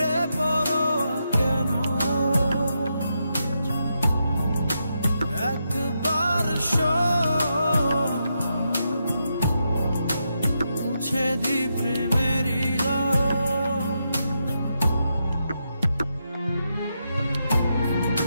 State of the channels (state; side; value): inverted; both; correlation -0.84